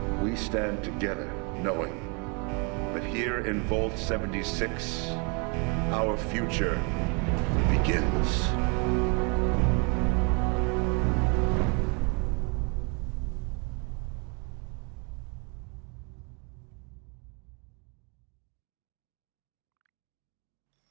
we stand together knowing that here in Vault 76, our future begins.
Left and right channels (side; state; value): left; quieter; 33.8 dB